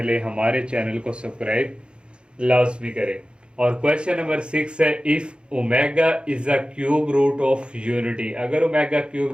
हमारे चैनल को सब्सक्राइब लाजमी करें। और क्वेश्चन नंबर 6 है, if omega is a cube root of unity. अगर omega cube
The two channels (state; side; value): late; left; 0.054 ms